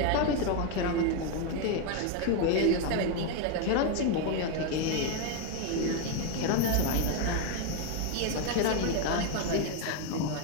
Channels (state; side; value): different; both; correlation 0.01